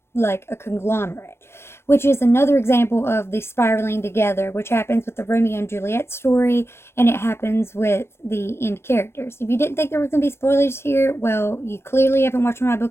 conglomerate. Which is another example of the spiraling together, which happens with the Romeo and Juliet story, and it happens with the end characters. If you didn't think there was going to be spoilers here, well, you clearly haven't watched my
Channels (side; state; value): right; late; 0.12 ms